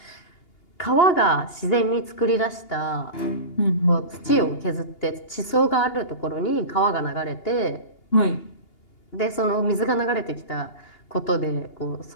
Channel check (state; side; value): late; right; 2.8 ms